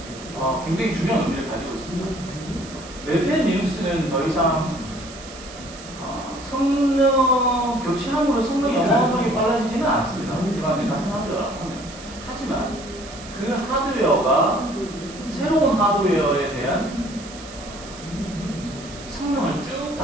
굉장히 중요한 의미를 가지고 있습니다. 레드 10 리눅스는 더 이상 성능 교체함으로 성능이 어마어마하게 빨라지지는 않습니다. 일반적인 같은 하드웨어라고 하면. 하지만 그 하드웨어가 새로운 하드웨어에 대한 성능을 쭉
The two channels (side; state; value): right; noise; hiss, 16 dB below the sound